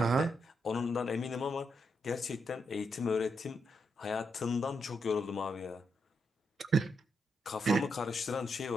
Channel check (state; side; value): normal; both; correlation 0.81